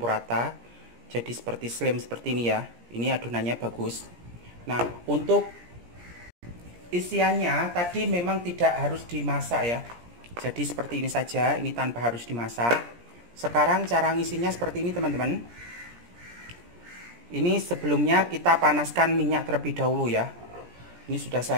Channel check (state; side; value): late; left; 17 ms